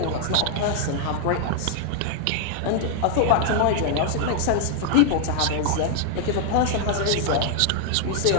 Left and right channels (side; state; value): both; different; correlation -0.01